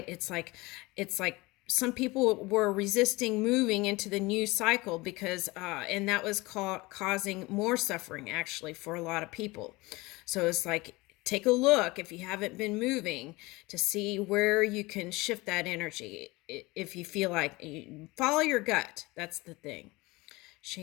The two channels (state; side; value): quieter; right; 22.5 dB